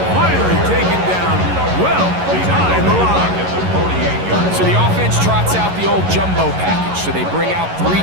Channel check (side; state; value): left; late; 11 ms